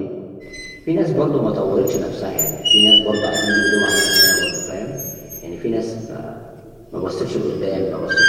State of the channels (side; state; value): both; identical; correlation 1.00